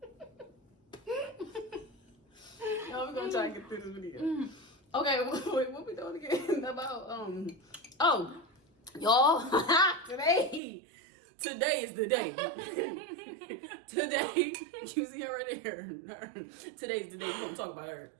Yo, we're gonna try and get through this video. Okay, wait, what we doing again? About oh, y'all, today is the day. Today, you see her right there. Today's the day we're gonna talk about her.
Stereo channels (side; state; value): left; drops out; at 10.6 s